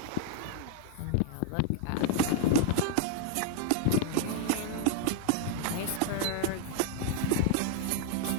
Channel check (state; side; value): different; both; correlation 0.00